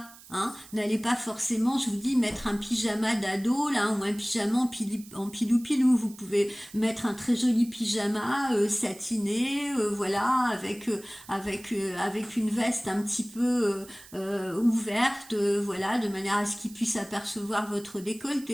Hein. N'allez pas forcément, je vous dis, mettre un pyjama d'ado là ou un pyjama en pilou-pilou. Vous pouvez mettre un très joli pyjama satiné, voilà, avec une veste un petit peu ouverte, voilà, de manière à ce qu'il puisse apercevoir votre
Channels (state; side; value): noise; right; hiss, 20 dB below the sound